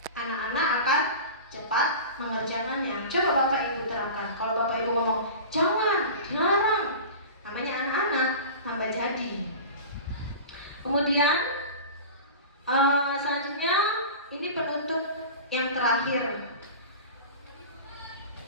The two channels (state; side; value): inverted; both; correlation -0.34